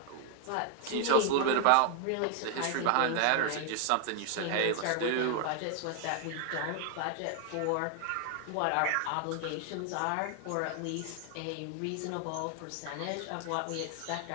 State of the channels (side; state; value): both; different; correlation 0.00